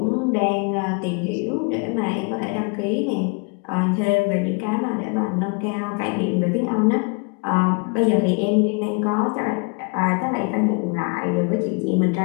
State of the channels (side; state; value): right; quieter; 32.8 dB